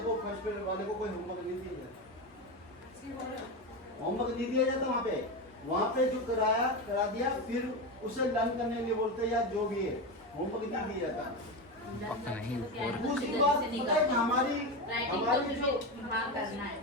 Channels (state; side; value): normal; both; correlation 0.17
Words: फर्स्ट ग्रेड वाले को कोई होमवर्क नहीं दिया जाता। होमवर्क नहीं दिया जाता वहाँ पे जो करा दिया, फिर उसे लर्न करने के लिए बोलते हैं या जो भी है, होमवर्क नहीं दिया जाता। दूसरी बात पता है कि हमारी जो हाँ करना है,